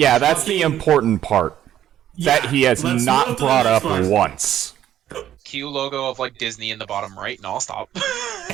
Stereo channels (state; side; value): quieter; left; 11.4 dB